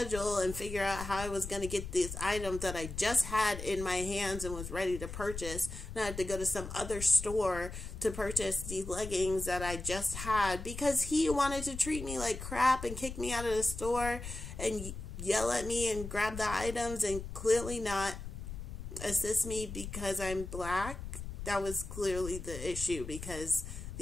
and figure out how I was going to get these items that I just had in my hands and was ready to purchase. Now I had to go to some other store to purchase these leggings that I just had because he wanted to treat me like crap and kick me out of the store and yell at me and grab the items and clearly not assist me because I'm black. That was clearly the issue because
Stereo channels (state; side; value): noise; left; rumble, 9 dB below the sound